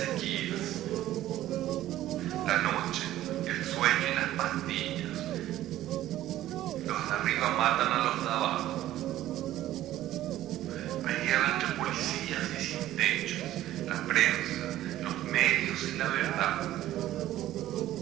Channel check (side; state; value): left; quieter; 13.9 dB